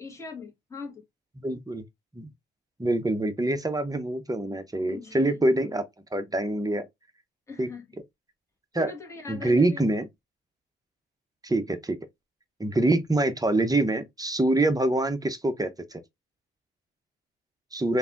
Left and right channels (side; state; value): both; normal; correlation 0.77